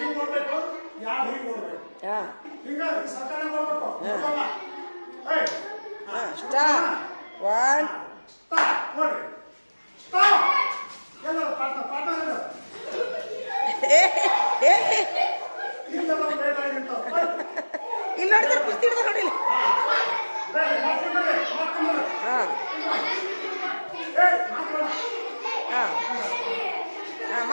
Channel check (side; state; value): both; inverted; correlation -1.00